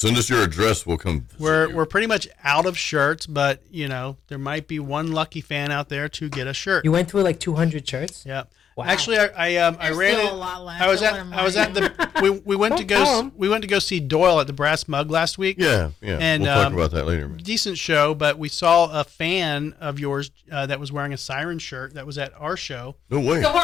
us your address. We'll come. visit you. We're pretty much out of shirts, but there might be one lucky fan out there to get a shirt. You went through like 200 shirts? Yeah. Wow. Actually, I There's ran still it. a lot left. I was Don't at let 'em I was lie. at the we went to Don't tell 'em. go see Doyle at the Brass Mug last week. Yeah. And, we'll talk about that later, man. Decent show, but we saw a fan of yours that was wearing a Siren shirt that was at our show. No way. So, hold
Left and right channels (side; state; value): right; quieter; 8.1 dB